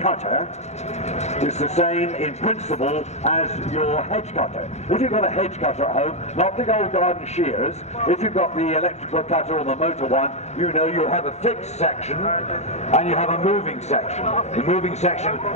is the same in principle as your hedge cutter. If you've got a hedge cutter at home, not the old garden shears, if you've got the electrical cutter or the motor one, you know you have a fixed section and you have a moving section. The moving section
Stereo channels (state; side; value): late; right; 0.32 ms